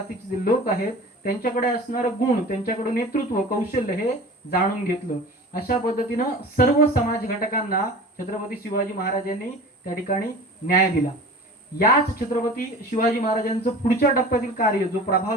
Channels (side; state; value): both; normal; correlation 0.38